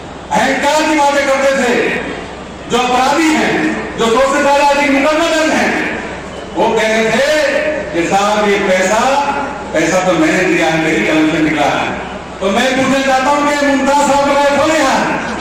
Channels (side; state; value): both; identical; correlation 1.00